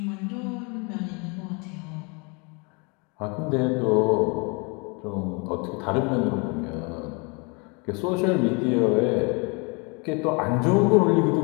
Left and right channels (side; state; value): right; quieter; 31.9 dB